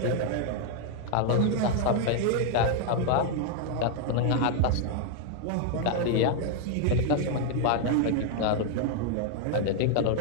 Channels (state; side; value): different; both; correlation 0.00